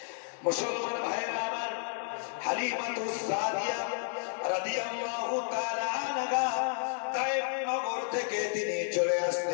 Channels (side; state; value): right; silent; digital silence